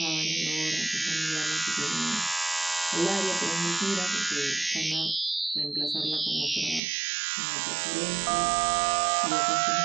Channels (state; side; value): drops out; left; at 6.8 s